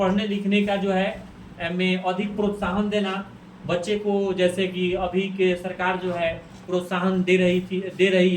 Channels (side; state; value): both; identical; correlation 1.00